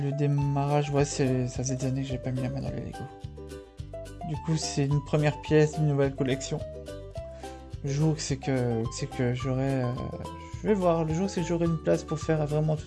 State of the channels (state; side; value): identical; both; correlation 1.00